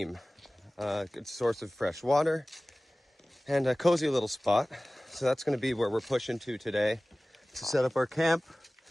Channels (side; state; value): both; normal; correlation 0.98